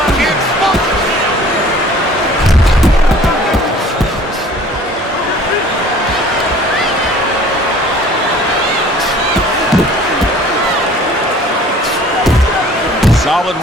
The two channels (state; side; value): normal; both; correlation 0.50